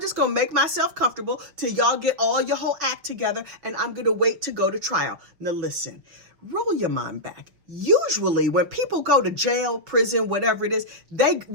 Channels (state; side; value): late; left; 6.1 ms